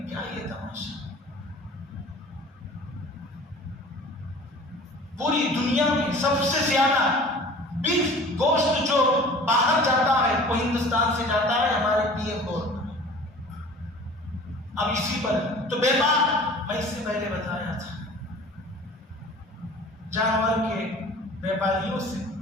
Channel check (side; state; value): both; normal; correlation 0.44